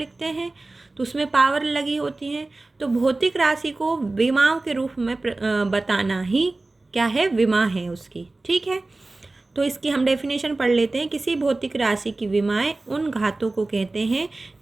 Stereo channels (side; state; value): left; quieter; 3.1 dB